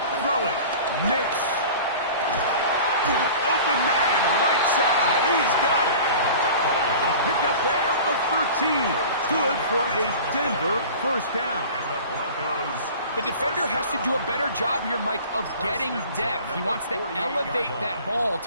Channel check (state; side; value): inverted; both; correlation -0.40